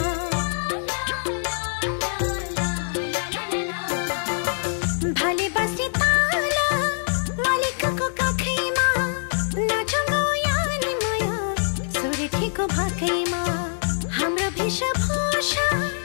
भाले बस्ने ताला मालिकको काखैमा, नाचौँ यानी माया सुर्खेको भाकैमा। हाम्रो वेशभूषा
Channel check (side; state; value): right; silent; digital silence